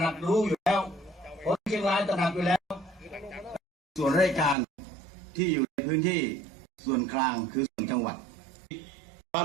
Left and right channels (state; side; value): drops out; left; at 4.5 s